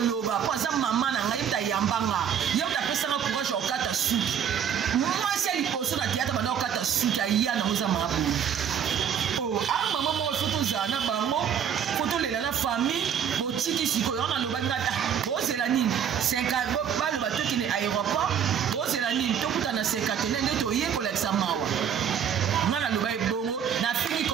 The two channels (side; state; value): left; quieter; 8.4 dB